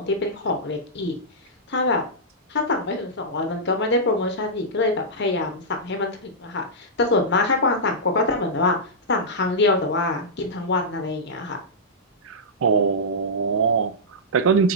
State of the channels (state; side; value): normal; both; correlation -0.12